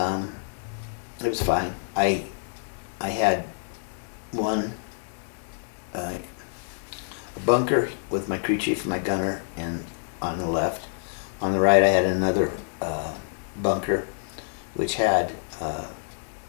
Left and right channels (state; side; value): silent; right; digital silence